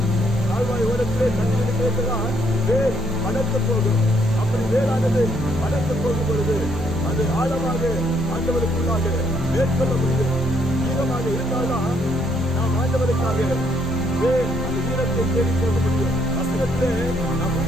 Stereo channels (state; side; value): normal; both; correlation 0.71